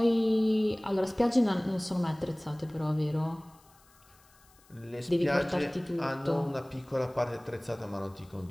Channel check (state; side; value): noise; left; hiss, 29 dB below the sound